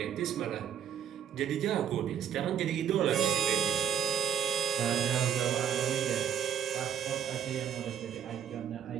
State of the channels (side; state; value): left; quieter; 8.7 dB